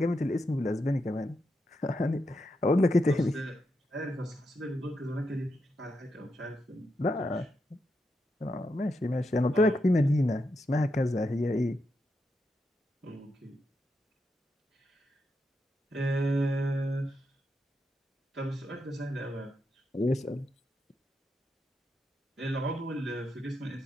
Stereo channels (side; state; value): both; normal; correlation 0.84